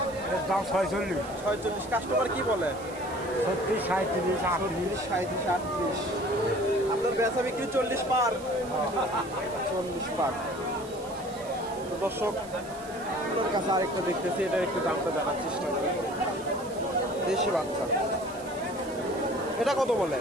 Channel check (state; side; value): noise; right; hiss, 19 dB below the sound